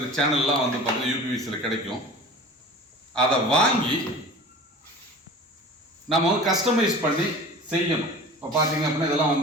சேனல்லாம் பார்த்தீங்கன்னா யூபிவிசியில் கிடைக்கும். அதை வாங்கி நம்ம கஸ்டமைஸ் பண்ணி செய்யணும். இப்போ பார்த்தீங்க அப்படின்னா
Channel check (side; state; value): both; normal; correlation 0.39